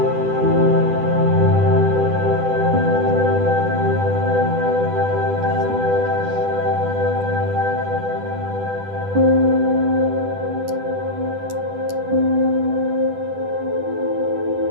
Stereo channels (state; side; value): late; left; 10 ms